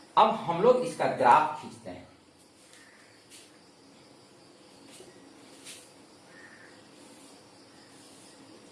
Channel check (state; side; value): identical; both; correlation 1.00